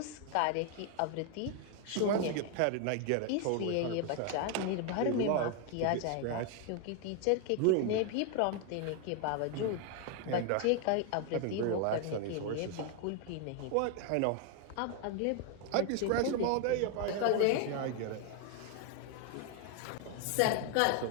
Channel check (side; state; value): both; different; correlation 0.00